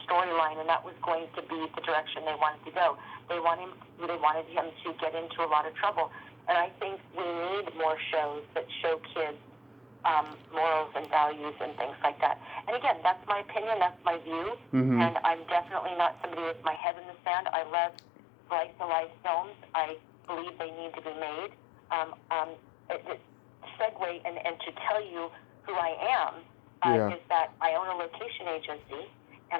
storyline, and that was going to be the direction they wanted to go. They wanted him to get into a lot of trouble. And I think we need more shows that show kids morals and values and things like that. And again, that's my opinion, that's my view, and I'm definitely not somebody with my head in the sand. I love slice-of-life films. I believe they need to be made. Segue and to tell you who I am is that I own a location agency, and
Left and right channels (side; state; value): right; drops out; at 16.8 s